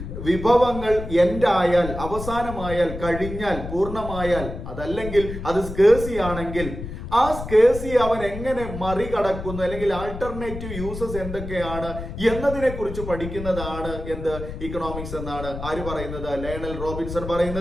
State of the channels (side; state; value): left; noise; rumble, 8 dB below the sound